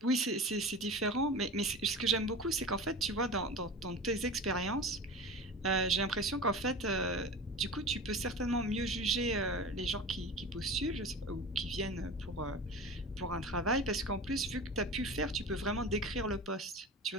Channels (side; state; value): both; normal; correlation 0.32